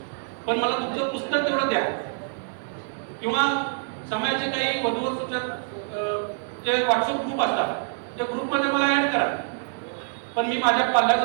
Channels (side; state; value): left; silent; digital silence